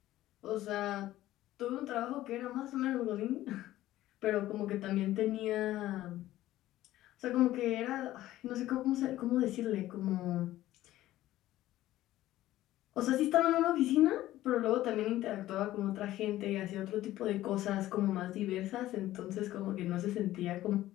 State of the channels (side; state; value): right; quieter; 14.9 dB